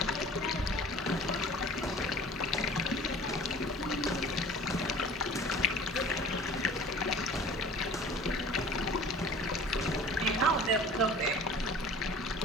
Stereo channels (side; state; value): both; normal; correlation 0.44